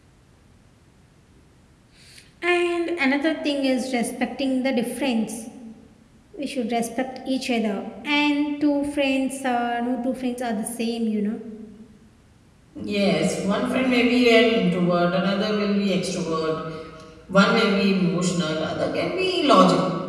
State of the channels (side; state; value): both; identical; correlation 1.00